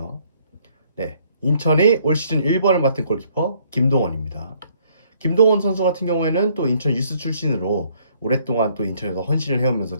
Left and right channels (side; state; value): both; inverted; correlation -0.65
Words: 네, 인천의 올 시즌 1번을 맡은 골키퍼 김동원입니다. 김동원 선수 같은 경우에는 또 인천 유스 출신으로 오랫동안 또 인천에서 헌신을 해오면서